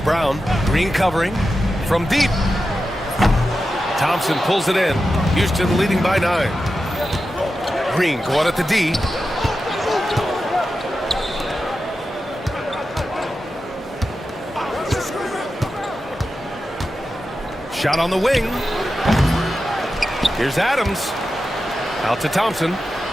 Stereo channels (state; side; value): normal; both; correlation 0.91